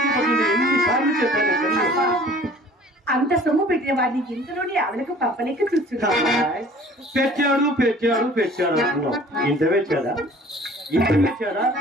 పడింది. ఎన్నిసార్లు చెప్పాను? అంత సొమ్ము పెట్టిన వాడిని ఇంతలోనే ఆవిడకు పప్పలేక చూస్తున్నా. పెట్టాడు ఇంత పెట్టాడా?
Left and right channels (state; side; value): normal; both; correlation 0.49